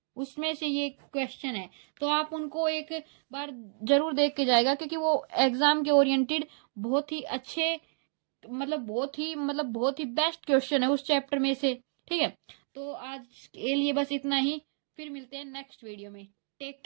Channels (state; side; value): silent; left; 57 dB below the other